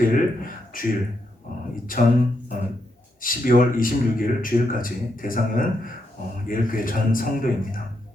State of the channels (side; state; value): both; normal; correlation 0.81